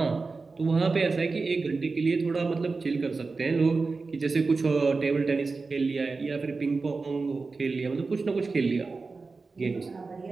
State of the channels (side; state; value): left; quieter; 4.1 dB